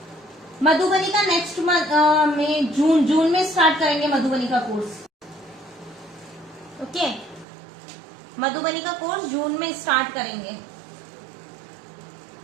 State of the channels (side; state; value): left; drops out; at 7.5 s